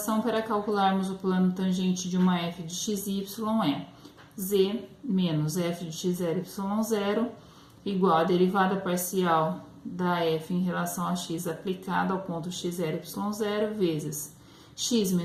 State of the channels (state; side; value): identical; both; correlation 1.00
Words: para calcularmos o plano tangente de uma f de x e y é z menos f de x0, y0 igual a derivada parcial da f em relação a x aplicada ao ponto x0, y0 vezes x